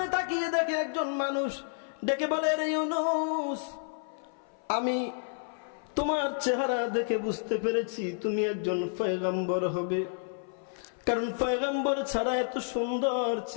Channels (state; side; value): silent; right; 56 dB below the other